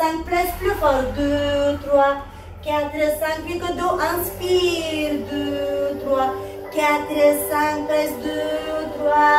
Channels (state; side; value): identical; both; correlation 1.00